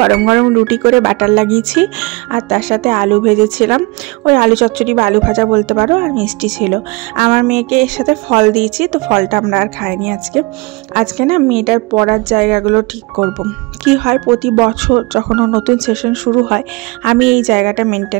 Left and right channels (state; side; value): quieter; left; 26.0 dB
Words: গরম রুটি করে বাটার লাগিয়েছি, আর তার সাথে আলু ভেজেছিলাম, ওই আলু চচ্চড়ি বা আলু ভাজা বলতে পারো, আর মিষ্টি ছিল। আমার মেয়েকে এর সাথে ফল দিয়েছি, তো ফলটা আমরা আর খাইনি আজকে না মেয়েটার পড়ার জায়গাগুলো ঠিক করব। কি হয়, প্রতি বছর যখন নতুন সেশন শুরু হয়, আমি এই জায়গাটা